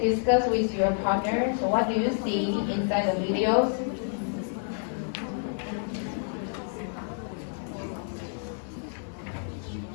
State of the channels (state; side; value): silent; right; digital silence